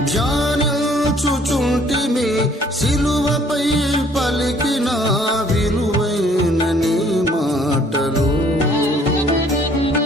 ధ్యానించుచుంటిమి సిలువపై పలికిన విలువైన నీ మాటలు.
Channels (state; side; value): normal; both; correlation 0.59